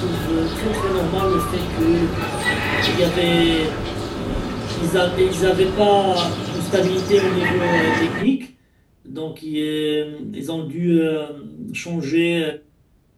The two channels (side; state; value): both; identical; correlation 1.00